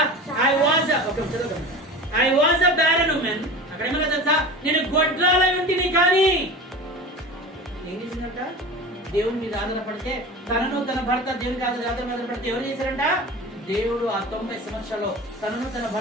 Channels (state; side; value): normal; both; correlation 0.34